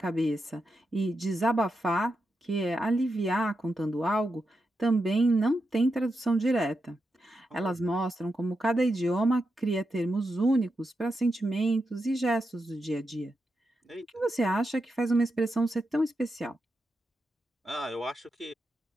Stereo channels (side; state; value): both; normal; correlation 0.87